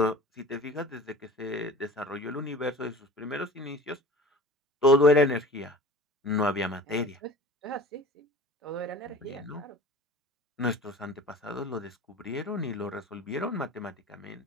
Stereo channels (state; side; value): normal; both; correlation 0.40